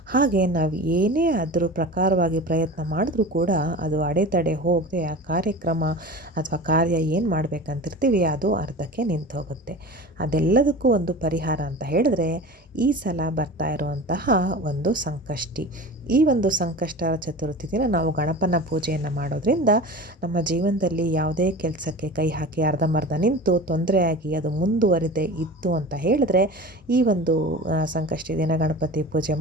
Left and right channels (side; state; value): both; normal; correlation 0.34